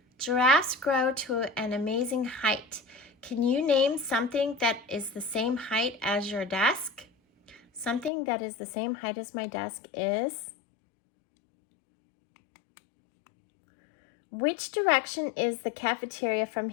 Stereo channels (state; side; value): drops out; right; at 8.1 s